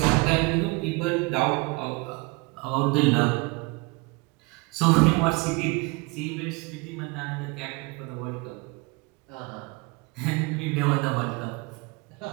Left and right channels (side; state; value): left; quieter; 26.9 dB